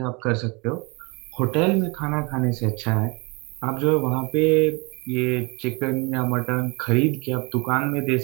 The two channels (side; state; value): left; quieter; 29.0 dB